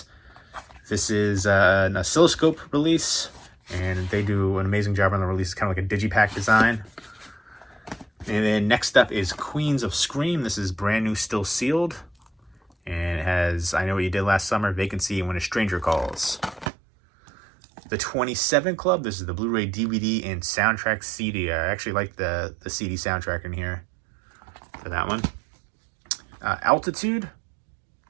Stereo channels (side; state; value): left; drops out; at 16.7 s